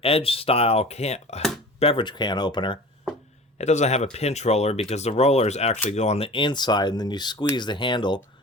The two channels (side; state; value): both; normal; correlation 0.39